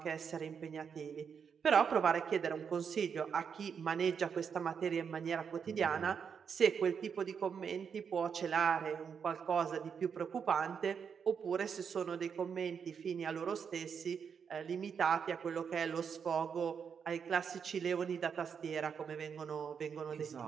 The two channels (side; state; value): left; quieter; 6.8 dB